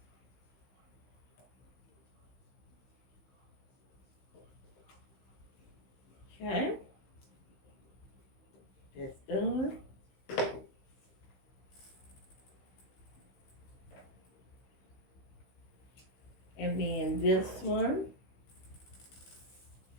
Okay, that's done. And then this one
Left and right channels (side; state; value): right; late; 15 ms